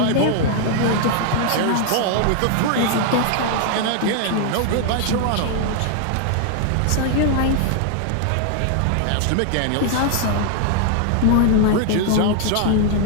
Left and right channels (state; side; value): different; both; correlation 0.00